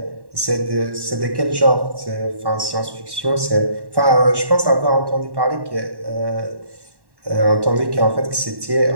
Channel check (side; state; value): left; late; 1.1 ms